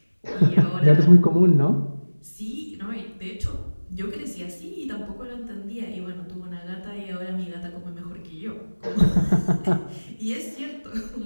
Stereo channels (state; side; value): inverted; both; correlation -1.00